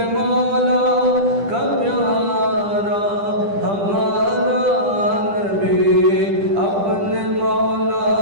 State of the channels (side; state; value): left; late; 10 ms